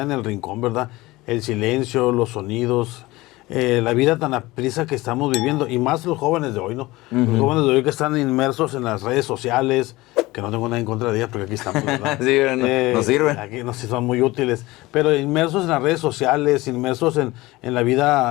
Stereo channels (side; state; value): right; quieter; 20.0 dB